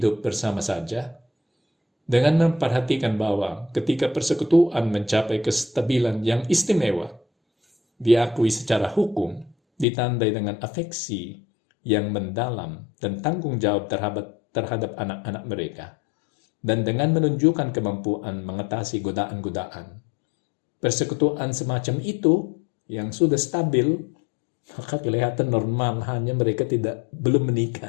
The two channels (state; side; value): drops out; right; at 9.9 s